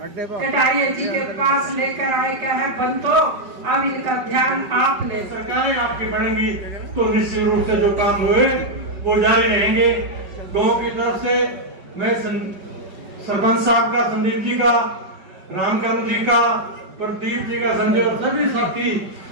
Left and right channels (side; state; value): left; late; 5.3 ms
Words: कटारिया जी के पास लेकर आए, क्या है बंतो अब इनका ध्यान आप ले। सरकारें आपकी बनेंगी तो निश्चित रूप से जो काम हुए वो जारी रहेंगे। गांव की तरफ से मैं सरपंच साहब का, संदीप जी का, रामचंद्र जी का, प्रदीप जी का, संजय और सभी साथी